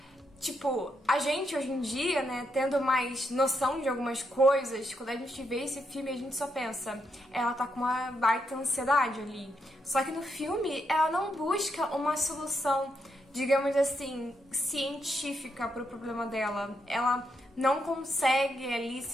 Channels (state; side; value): normal; both; correlation 0.80